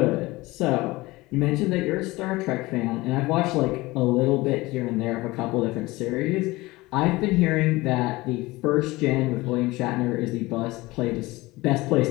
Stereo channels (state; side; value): quieter; right; 20.8 dB